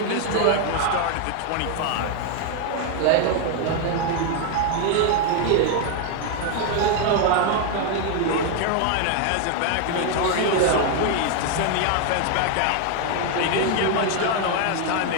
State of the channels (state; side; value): different; both; correlation 0.01